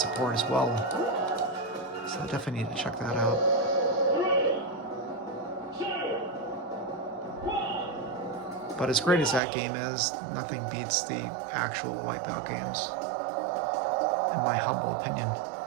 as well. So I definitely need to check that out. But as great as that game is, nothing beats the actual Wipeout games, in my humble opinion.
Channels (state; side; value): drops out; left; at 9.4 s